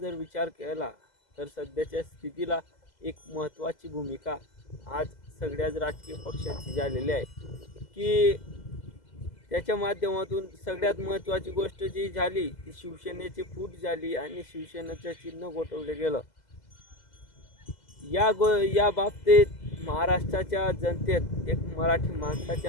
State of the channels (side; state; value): right; late; 2.0 ms